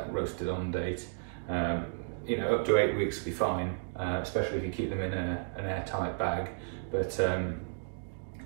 roasted on date. You know, up to 8 weeks will be fine, especially if you keep them in an airtight bag. But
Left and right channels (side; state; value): left; silent; digital silence